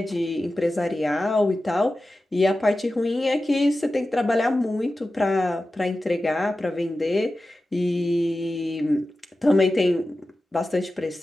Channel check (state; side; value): normal; both; correlation 0.94